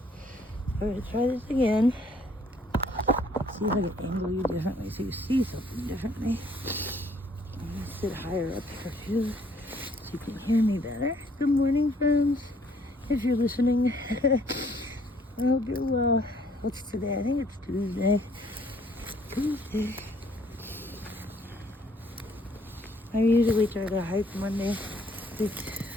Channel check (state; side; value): normal; both; correlation 0.63